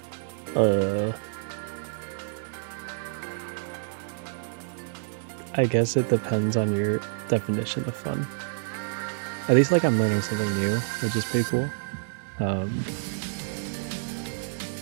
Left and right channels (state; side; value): silent; left; 58 dB below the other